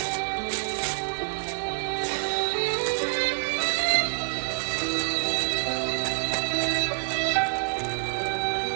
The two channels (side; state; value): left; silent; digital silence